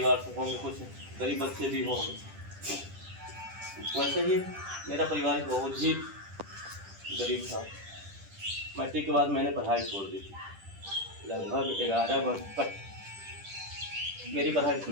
से होंगे, कुछ गरीब बच्चे भी होंगे। वैसे ही मेरा परिवार बहुत ही गरीब था। मैट्रिक के बाद मैंने पढ़ाई छोड़ दी थी। लगभग 11 वर्ष तक मेरी पढ़ाई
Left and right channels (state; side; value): late; left; 10 ms